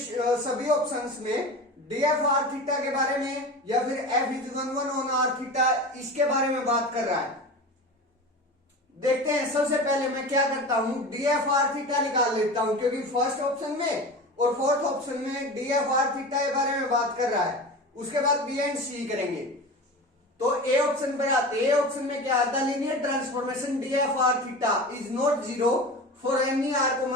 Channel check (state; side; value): normal; both; correlation 0.31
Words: ऑप्शंस में डी एफ आर थीटा के बारे में या फिर F is 1 on R theta, इसके बारे में बात कर रहा है। देखते हैं, सबसे पहले मैं क्या करता हूं, डी एफ आर थीटा निकाल लेता हूं, क्योंकि फर्स्ट ऑप्शन में और 4th ऑप्शन में डी एफ आर थीटा के बारे में बात कर रहा है। उसके बाद बी एंड सी करेंगे। तो ए ऑप्शन पर आते, ए ऑप्शन में क्या आता है, linear transformation D F R theta is not 0 for any r